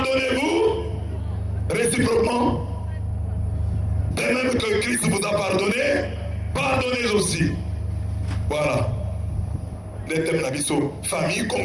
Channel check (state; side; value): identical; both; correlation 1.00